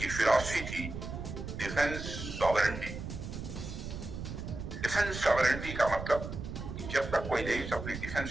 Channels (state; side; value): noise; right; rumble, 7 dB below the sound